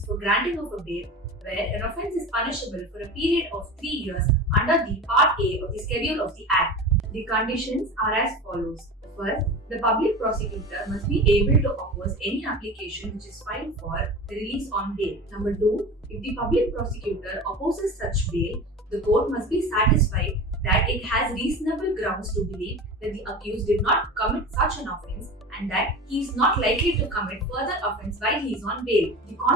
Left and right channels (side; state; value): both; normal; correlation 0.31